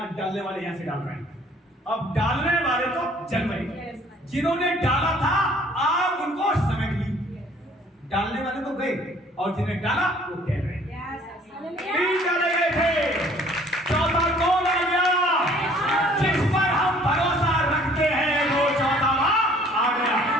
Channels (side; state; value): both; normal; correlation 0.56